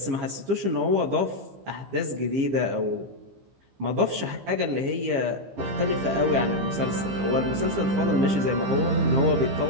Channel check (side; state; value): left; late; 15 ms